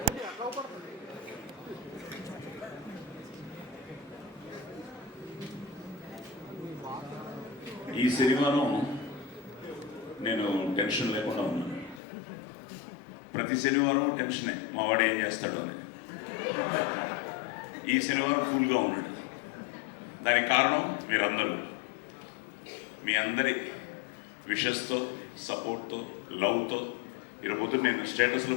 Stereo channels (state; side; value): drops out; right; at 12.0 s